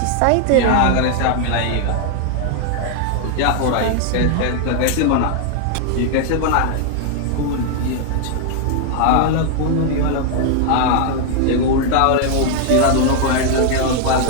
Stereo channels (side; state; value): both; different; correlation 0.00